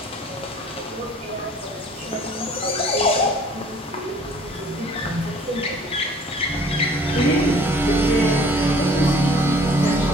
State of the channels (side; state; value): both; normal; correlation 0.53